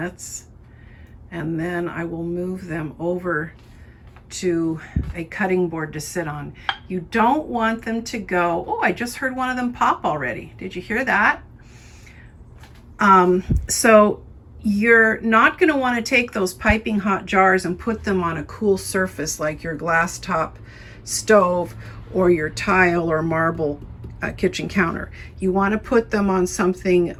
and then I will move them over to a cutting board to sit on. You don't want them to go, oh, I just heard one of them pop already. Did you hear that? So you're not going to want to take those piping hot jars and put them on a cool surface like your glass top stove or your tile or marble kitchen counter. You want to put them on something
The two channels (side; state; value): both; identical; correlation 1.00